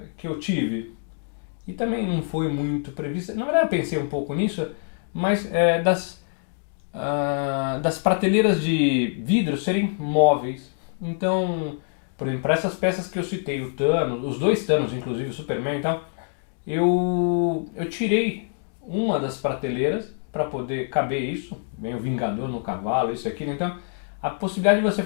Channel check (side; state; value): right; silent; 62 dB below the other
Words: tive, e também não foi muito previsto, na verdade eu pensei um pouco nisso, mas das prateleiras de vidro serem móveis. Então, por exemplo, para essas peças que eu citei, o Thanos, os 2 Thanos, inclusive o Superman e tal, eu tirei uma das prateleiras para poder caber isso, vem o Vingador no cavalo, isso aqui, então a possibilidade de você